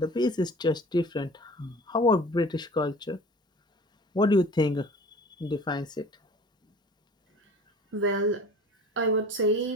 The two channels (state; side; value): normal; both; correlation 0.43